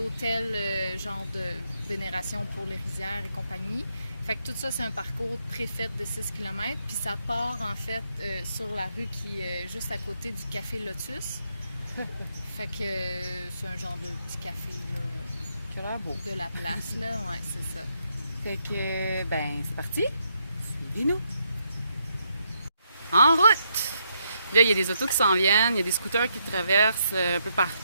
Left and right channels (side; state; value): both; inverted; correlation -0.78